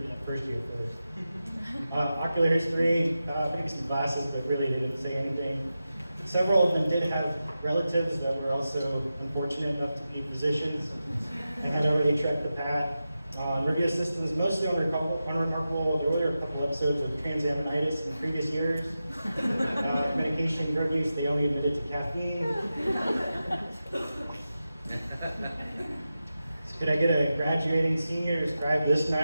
that first year first. Ocular history, maybe some glasses, but really didn't say anything. Several of them did have relatives that were also unfortunate enough to be physicians and had already trekked the path. Review systems, mostly unremarkable. There were a couple episodes of transaminitis in previous years. Medication, drug use, they only admitted to caffeine. So could I get a graduating senior to describe this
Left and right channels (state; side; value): inverted; both; correlation -0.92